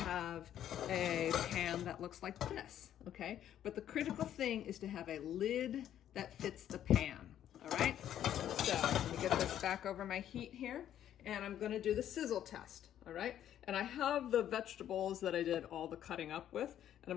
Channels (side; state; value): right; quieter; 10.9 dB